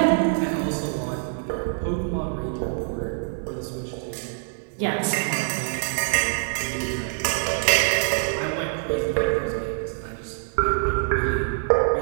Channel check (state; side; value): silent; left; digital silence